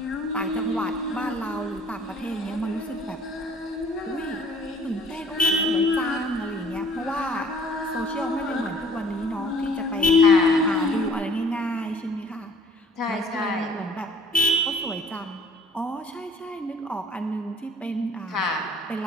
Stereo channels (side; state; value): both; normal; correlation 0.55